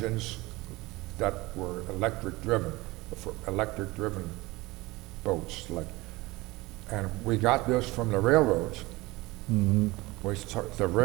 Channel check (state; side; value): quieter; left; 21.2 dB